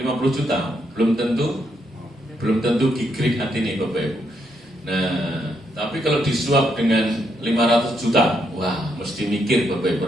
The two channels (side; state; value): both; normal; correlation 0.77